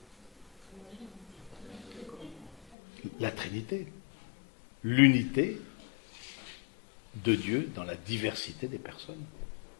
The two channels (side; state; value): right; drops out; at 2.6 s